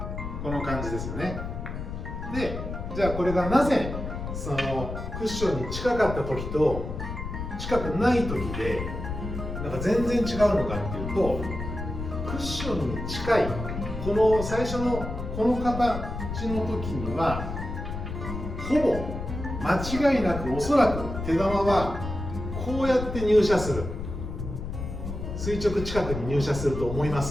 この感じですよね。で、じゃあこれがなぜそのクッションに近かった時と近くない時で全然違うのかっていうと、クッションに近いこの最初のこの形の時にはほぼ間違いなく、おそらく手玉はこうやって入射する、垂直近くに入射すると思いま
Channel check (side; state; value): left; noise; rumble, 6 dB below the sound